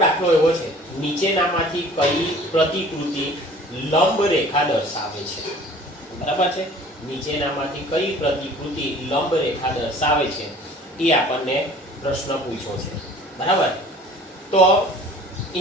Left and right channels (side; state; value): both; normal; correlation 0.48